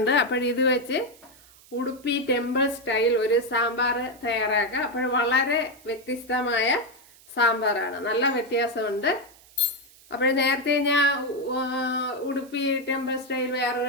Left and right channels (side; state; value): right; noise; hiss, 25 dB below the sound